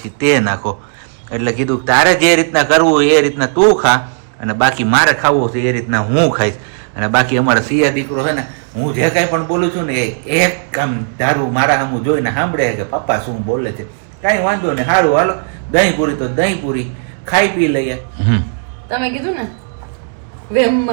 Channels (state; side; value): silent; left; 70 dB below the other